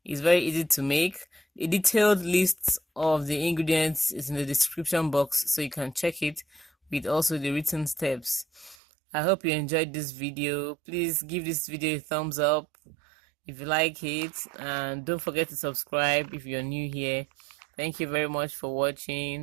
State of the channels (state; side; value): drops out; left; at 8.8 s